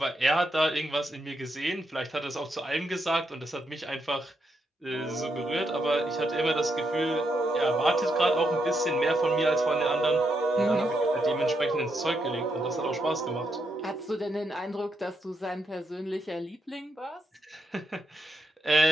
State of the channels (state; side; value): normal; both; correlation 0.81